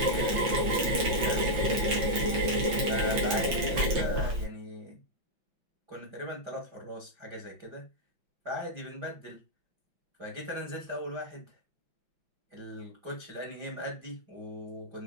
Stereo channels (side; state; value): left; late; 5.7 ms